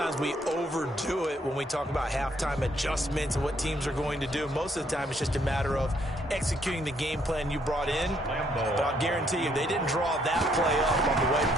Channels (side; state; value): both; normal; correlation 0.69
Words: we overdo it when we talk about halftime adjustments and what teams are going to do. Most of the time, it's just a matter of executing the game plan you brought in. But I'll guarantee you, they didn't draw that play up on the